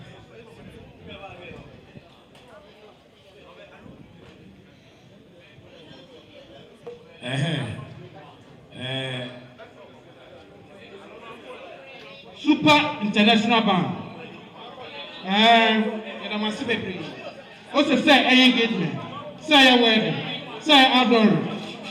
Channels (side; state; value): both; identical; correlation 1.00